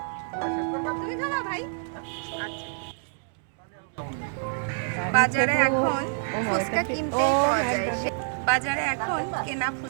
তুমি খাবা ভাই? আচ্ছা। বাজারে এখন ফুচকা কিনতে পাওয়া যায়, বাজারে এখন কেনা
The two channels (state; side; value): silent; left; digital silence